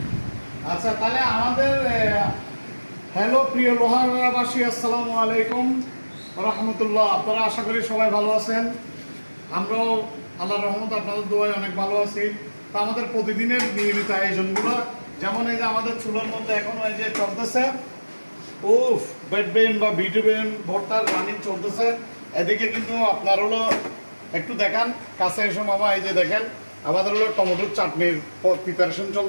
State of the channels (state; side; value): inverted; both; correlation -1.00